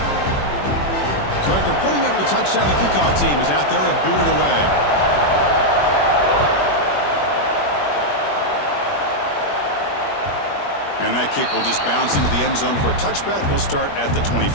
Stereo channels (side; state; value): right; late; 21 ms